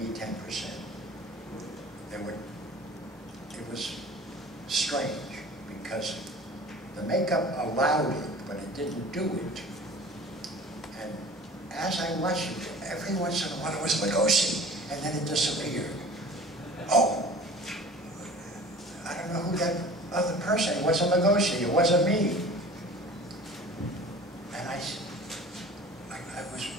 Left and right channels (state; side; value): normal; both; correlation 0.43